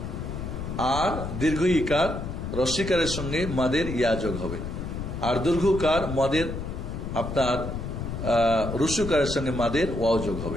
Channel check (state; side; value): noise; left; rumble, 6 dB below the sound